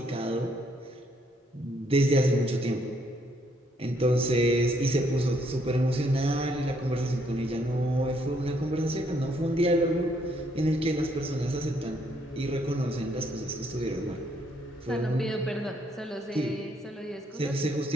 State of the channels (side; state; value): both; normal; correlation 0.70